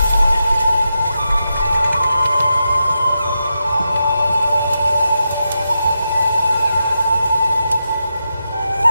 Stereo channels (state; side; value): inverted; both; correlation -0.87